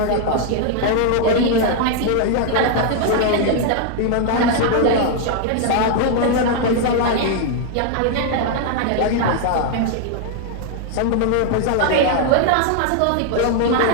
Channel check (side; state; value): both; different; correlation 0.00